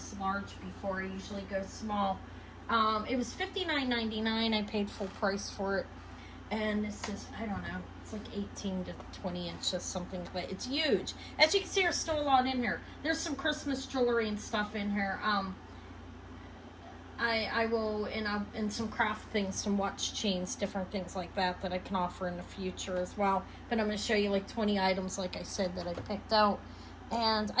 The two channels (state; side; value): identical; both; correlation 1.00